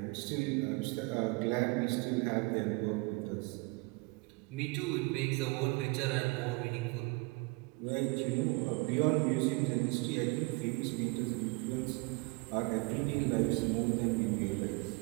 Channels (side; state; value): left; quieter; 27.4 dB